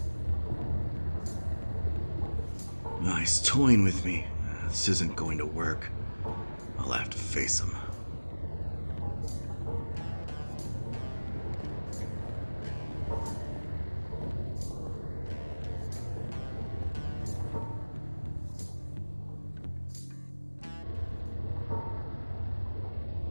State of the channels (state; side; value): inverted; both; correlation -1.00